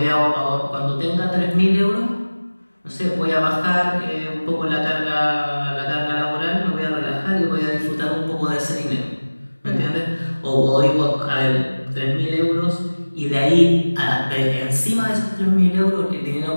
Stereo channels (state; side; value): inverted; both; correlation -1.00